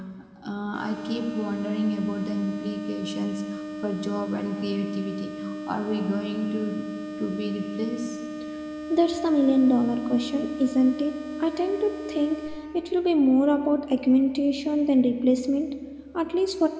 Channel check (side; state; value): both; identical; correlation 1.00